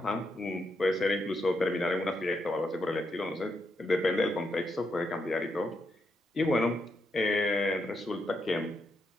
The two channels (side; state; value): both; normal; correlation 0.81